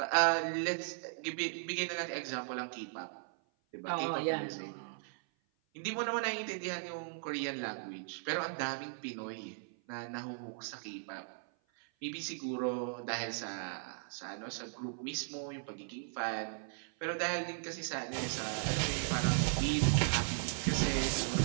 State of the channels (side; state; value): left; silent; 53 dB below the other